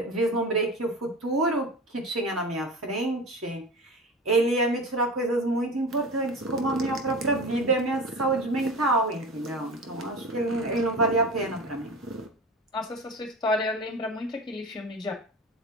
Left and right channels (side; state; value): both; normal; correlation 0.30